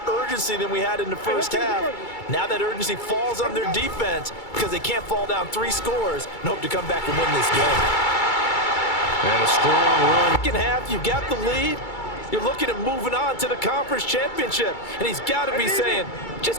urgency than we had in the first half. Now that urgency falls on their defense because they can't fall down 3 scores and hope to come back and win this game. And a strong run. Second half, you've got the lead. You're looking at moving on to the conference championship. And he's got to be saying,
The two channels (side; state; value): right; late; 2.3 ms